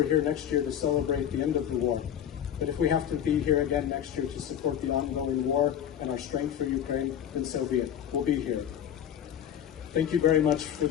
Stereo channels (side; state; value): right; quieter; 9.6 dB